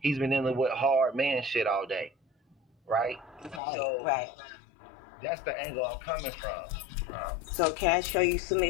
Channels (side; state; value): right; drops out; at 3.6 s